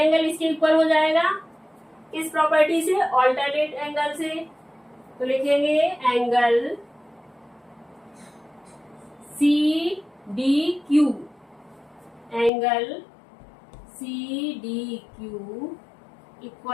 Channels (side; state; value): right; drops out; at 12.5 s